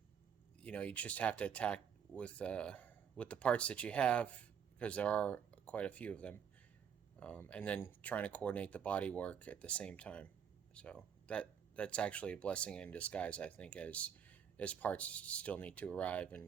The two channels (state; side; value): quieter; left; 7.8 dB